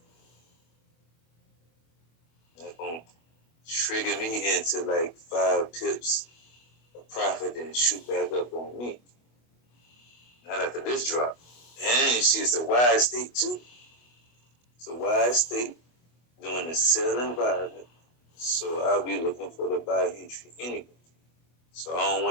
That's going to trigger me into like 5 pips of profit and shoot back up on me. Not after this drop. And you see it's a wide state too. It's a wide state doing the sell environment. So I'll be looking for the buy entry anyway. So I don't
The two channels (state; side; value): late; right; 25 ms